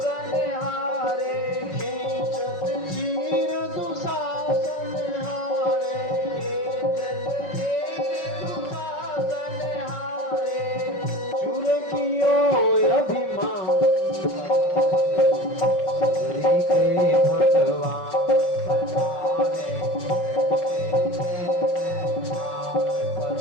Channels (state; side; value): late; right; 5.4 ms